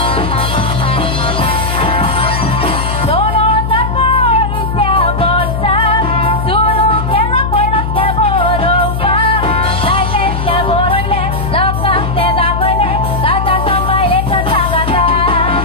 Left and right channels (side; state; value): left; noise; hum, 3 dB below the sound